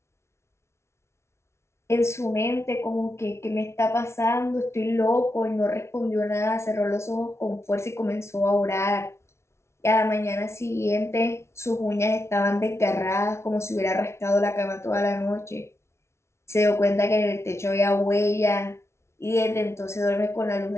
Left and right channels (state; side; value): late; right; 0.13 ms